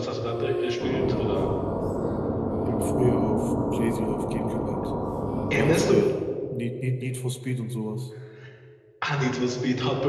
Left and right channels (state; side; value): identical; both; correlation 1.00